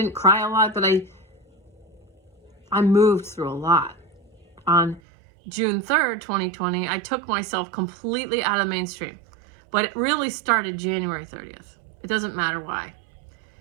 cry a lot, but I moved through a lot. On June 3rd, 2020, I took myself completely out of the mainstream. But it really started January 30th. It doesn't matter why.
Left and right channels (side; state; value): left; drops out; at 5.0 s